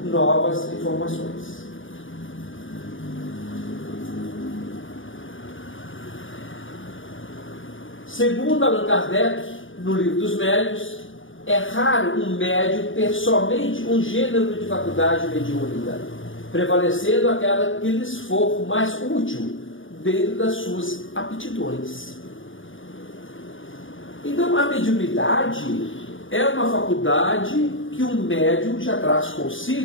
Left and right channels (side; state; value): right; late; 0.57 ms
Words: novas informações. Segundo Allan Kardec, no Livro dos Médiuns, é raro um médium ter somente um gênero de faculdade mediúnica, prevalecendo aquela que lhes for mais útil dentro das suas aptidões. Então, a mediunidade é uma faculdade que um médium já traz